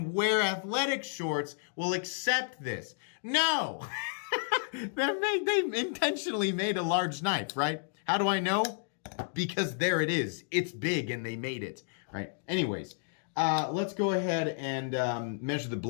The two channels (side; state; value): right; silent; digital silence